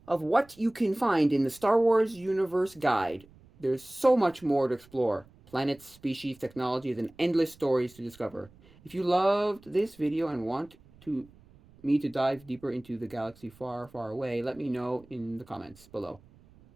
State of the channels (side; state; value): right; noise; rumble, 26 dB below the sound